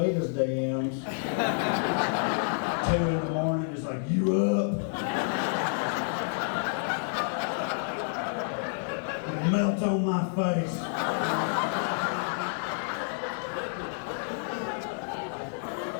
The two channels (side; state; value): right; silent; 58 dB below the other